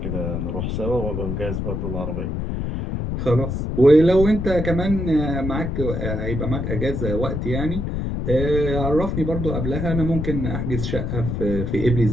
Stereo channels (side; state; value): left; noise; rumble, 2 dB below the sound